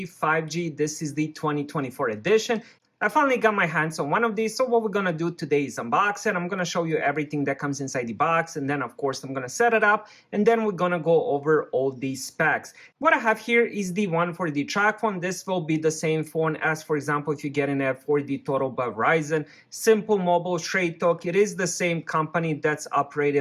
5G. This is the 2024 edition. I finally got my hands on one of these, so what we're going to do today is unbox it. I'm going to show you everything that comes inside the box, and then of course I'm going to set it up, and then we're going to go over all these specs. What I have here is the one for the Tracfone. This will be the same phone as, for example, if you're getting it for the Total by Verizon. Simple Mobile, Straight Talk. It is the same company that's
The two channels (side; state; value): both; identical; correlation 1.00